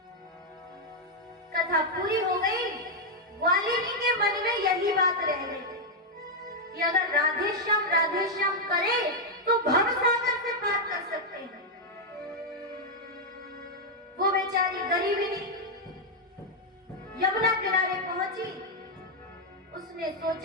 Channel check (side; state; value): both; normal; correlation -0.01